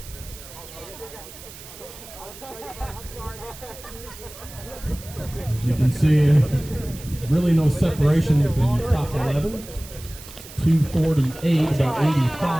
really no separation with the top 11. 2:48, about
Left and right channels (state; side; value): noise; right; hiss, 16 dB below the sound